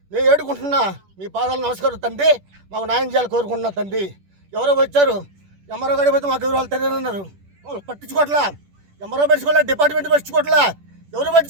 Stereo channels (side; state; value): left; late; 10 ms